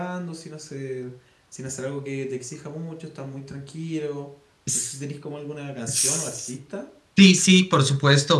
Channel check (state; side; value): identical; both; correlation 1.00